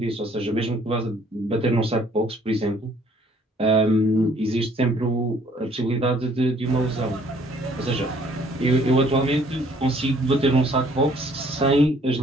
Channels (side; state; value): both; normal; correlation 0.60